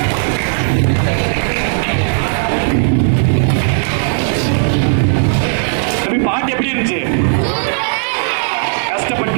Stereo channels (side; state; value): left; silent; digital silence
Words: பாட்டு எப்படி இருந்துச்சு?